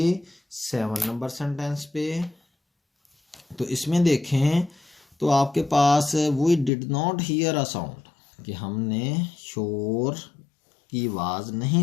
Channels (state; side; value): drops out; right; at 6.7 s